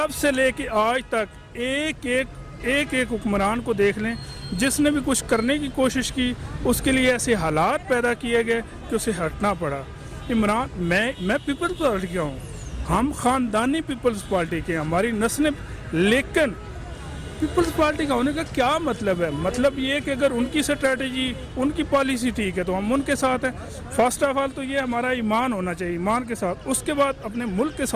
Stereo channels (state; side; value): identical; both; correlation 1.00